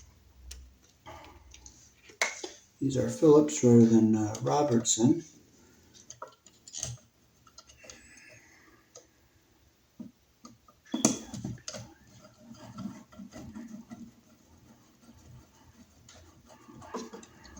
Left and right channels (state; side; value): identical; both; correlation 1.00